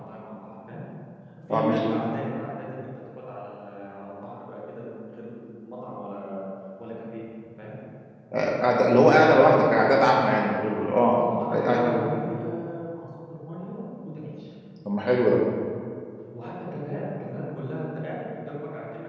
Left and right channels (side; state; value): both; identical; correlation 1.00